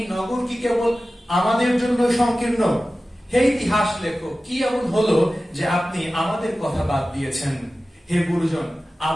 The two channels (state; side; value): normal; both; correlation 0.95